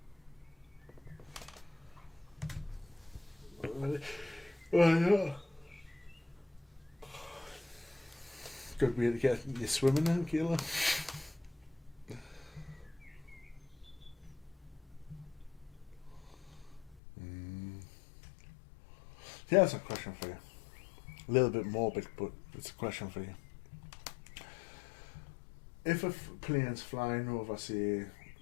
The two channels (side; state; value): right; drops out; at 17.0 s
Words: Yeah. Good way to get you swimming in, Kayla. Yeah, that's a question for you. A little bit morbid, but it's a question for you. If a plane's flying over, say,